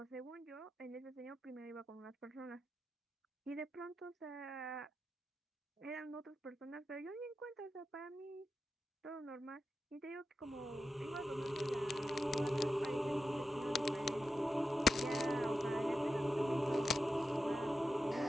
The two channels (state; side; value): normal; both; correlation 0.90